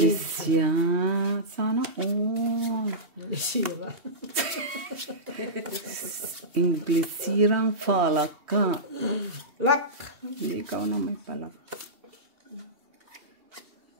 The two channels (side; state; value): left; late; 2.7 ms